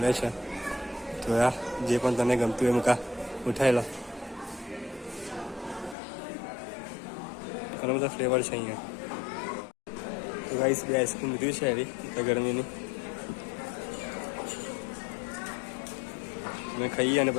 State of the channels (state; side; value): drops out; right; at 6.0 s